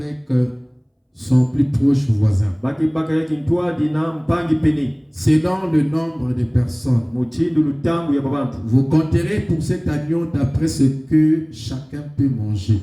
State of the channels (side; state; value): both; identical; correlation 1.00